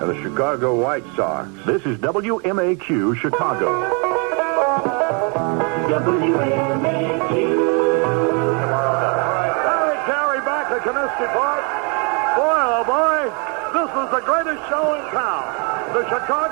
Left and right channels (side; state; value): left; quieter; 34.8 dB